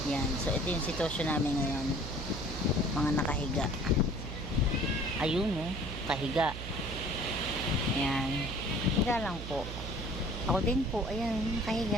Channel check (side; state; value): right; noise; hum, 8 dB below the sound